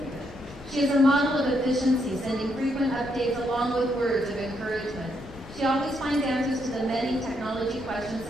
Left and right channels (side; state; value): both; normal; correlation 0.77